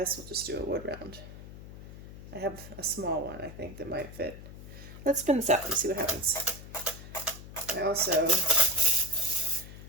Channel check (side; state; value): left; noise; hum, 14 dB below the sound